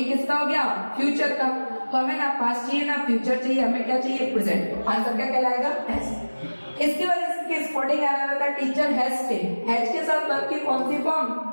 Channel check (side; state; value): both; inverted; correlation -1.00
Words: किसका हो गया, फ्यूचर का। तो हमें ना पास्ट चाहिए ना फ्यूचर चाहिए, हमें क्या चाहिए, प्रेजेंट। आंसर क्या कहलाएगा, हैज। इसकी वजह से स्पोर्टिंग एरर आता है, टीचर हैज टेक। हैज के साथ वर्ब की कौन सी फॉर्म,